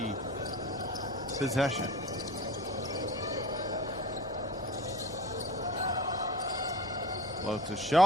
possession. Floats a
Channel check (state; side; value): noise; left; hum, 23 dB below the sound